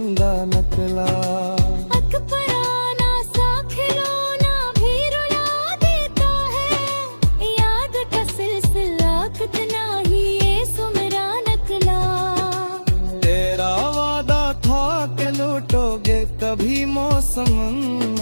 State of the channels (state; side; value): inverted; both; correlation -1.00